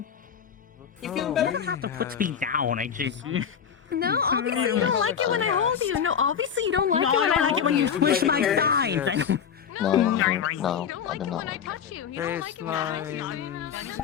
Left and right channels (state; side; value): quieter; right; 7.8 dB